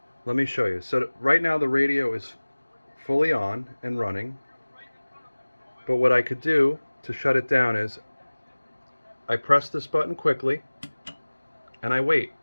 Let me show you. So right now the radio is fully on and running, but what I could do to shut it down is I press this button quickly and I wait,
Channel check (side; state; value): both; inverted; correlation -1.00